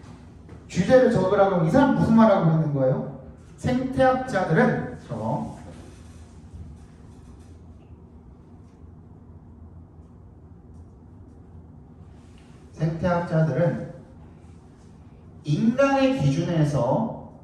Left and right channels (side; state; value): both; identical; correlation 1.00